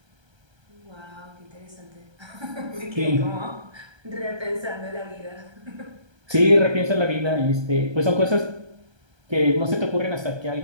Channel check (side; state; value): left; late; 1.3 ms